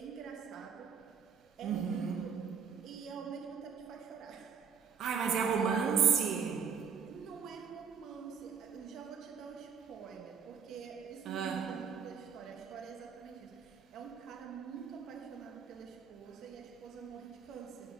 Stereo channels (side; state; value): left; quieter; 6.8 dB